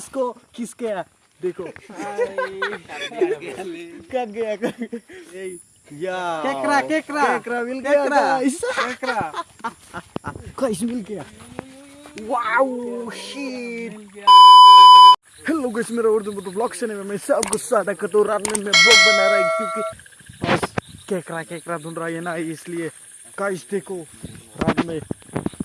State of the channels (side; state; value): both; identical; correlation 1.00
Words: किस गया देखो, कट गया या केकरा मिल गया गाइस, गाइस मिल गया, वाओ शिट। हेलो गाइस, मेरा उर्दू में ब्लॉग चैनल में मैं सबको स्वागत करता हूँ। रात में मैं ब्लॉग बना रहा हूँ क्योंकि बस केकरा ढूंढ रहा है ना, इसलिए गाइस देखो रात में